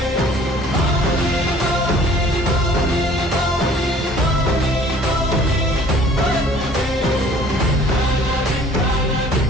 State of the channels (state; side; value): normal; both; correlation 0.53